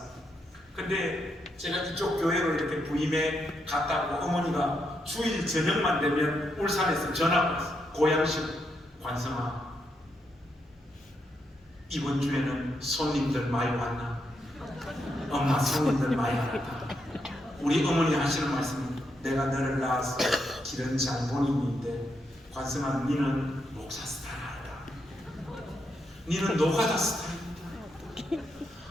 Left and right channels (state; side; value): normal; both; correlation 0.80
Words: 근데 제가 이쪽 교회로 이렇게 부임해 갔다고 어머니가 주일 저녁만 되면 울산에서 전화가 왔어요. 고향식 관성아 이번 주에는 손님들 많이 왔나? 엄마 손님들 많이 왔다. 우리 어머니 하시는 말씀은 내가 너를 낳아서 기른 장본인인데 관성아 니는 목사 스타일 아니다. 니는 노가다 스타일이다.